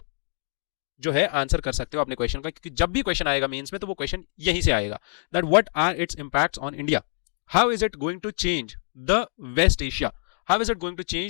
जो है आंसर कर सकते हो अपने क्वेश्चन का, क्योंकि जब भी क्वेश्चन आएगा मेंस में तो वो क्वेश्चन यहीं से आएगा, that what are its impacts on India, how is it going to change the West Asia, how is it going to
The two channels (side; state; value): right; silent; digital silence